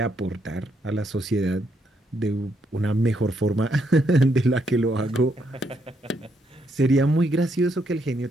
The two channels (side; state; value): both; normal; correlation 0.76